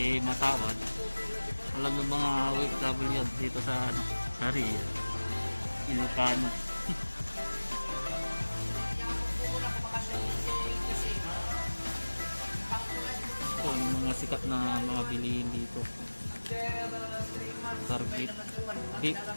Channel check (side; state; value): both; inverted; correlation -1.00